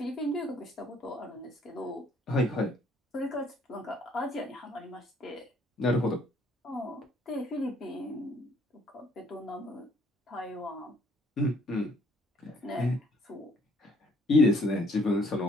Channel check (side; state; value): both; normal; correlation 0.64